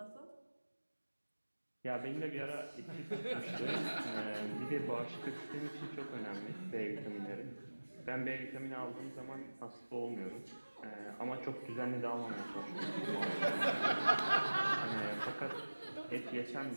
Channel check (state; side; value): inverted; both; correlation -1.00